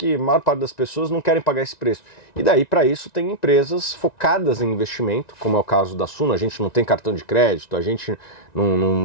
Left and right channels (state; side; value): late; right; 1.9 ms